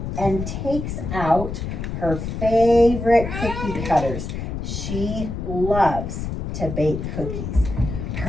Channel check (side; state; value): left; noise; rumble, 5 dB below the sound